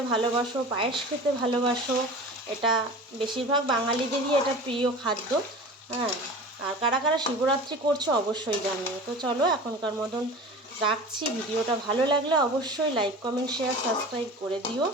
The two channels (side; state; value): both; normal; correlation 0.36